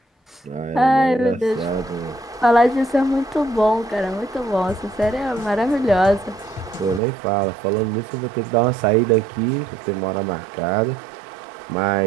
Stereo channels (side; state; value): left; drops out; at 7.0 s